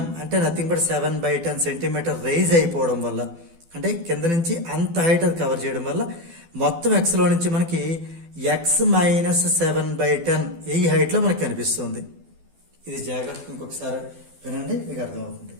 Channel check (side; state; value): left; late; 12 ms